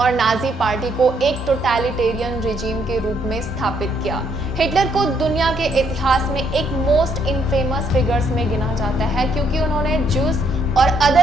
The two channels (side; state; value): both; normal; correlation 0.71